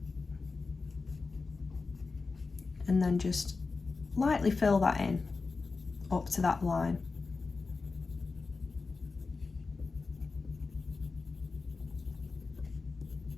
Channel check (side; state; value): right; quieter; 4.1 dB